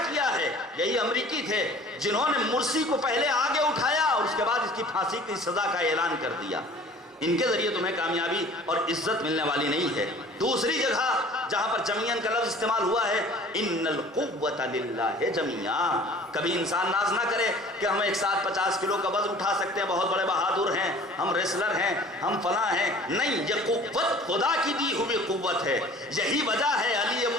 کیا ہے۔ یہی امریکی تھے جنہوں نے مرسی کو پہلے آگے اٹھایا اور اس کے بعد اس کی پھانسی کی سزا کا اعلان کر دیا۔ ان کے ذریعے تمہیں کامیابی اور عزت ملنے والی نہیں ہے۔ دوسری جگہ جہاں پر جمیعاً کا لفظ استعمال ہوا ہے، ان القوت للہ جمیعا۔ کبھی انسان ناز نہ کرے کہ ہم ایک ساتھ 50 کلو کا وزن اٹھا سکتے ہیں، بہت بڑے بہادر ہیں، ہم ریسلر ہیں، ہم فلاں ہیں۔ نہیں، یہ قوت خدا کی دی ہوئی قوت ہے۔ یہی وجہ ہے علی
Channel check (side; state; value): both; normal; correlation 0.48